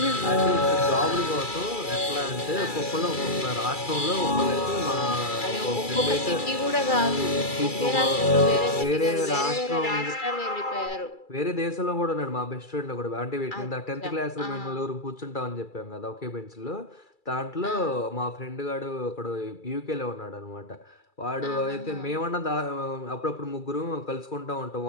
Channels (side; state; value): right; late; 2.3 ms